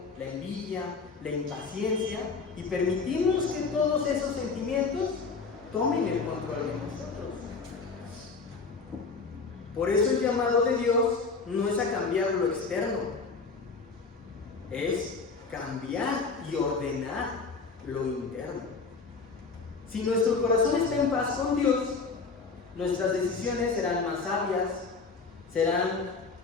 la envidia, la impaciencia y permitimos que todos esos sentimientos tomen el control de nosotros. Por eso el llamado de Dios no es a cambiar lo externo, es cambiar y ordenar lo interno. Si nuestro corazón está en paz con Dios, nuestras decisiones serán más sabias, serán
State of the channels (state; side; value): quieter; right; 4.5 dB